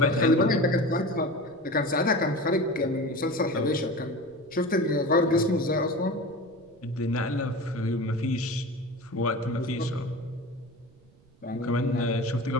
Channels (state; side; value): noise; right; rumble, 29 dB below the sound